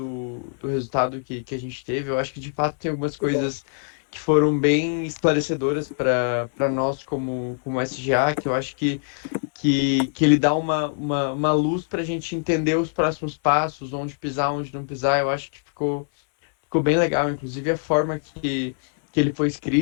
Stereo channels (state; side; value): silent; right; 61 dB below the other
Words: resultado que a gente teve. Eu acho que de fato tem algumas coisas que foram bem esclarecedoras para nós como SGA, que eu acho que ele dá uma luz para a gente entender os próximos passos, onde pisar, onde não pisar. Eu acho que ficou bem legal, inclusive a forma que ele foi